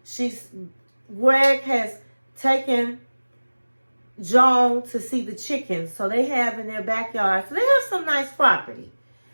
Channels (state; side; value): inverted; both; correlation -1.00